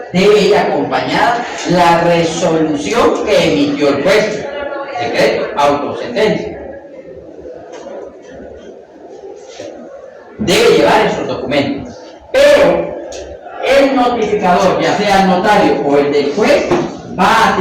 debe ir acompañada la resolución que emitió el juez, decreto, autosentencia. Debe llevar esos documentos, pero el notificador, ya sea el notario o el del juez, va a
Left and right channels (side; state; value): both; identical; correlation 1.00